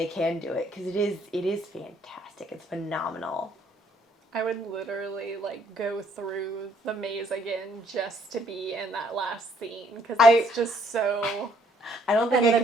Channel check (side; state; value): both; normal; correlation 0.66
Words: can do it, because it is fantastic. It's phenomenal. I would literally like go through the maze again just to be in that last scene, because it's just so. I don't think and I the